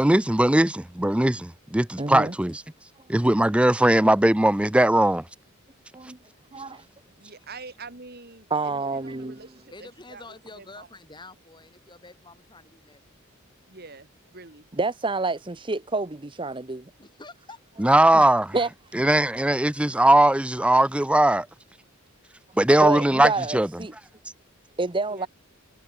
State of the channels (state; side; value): normal; both; correlation 0.87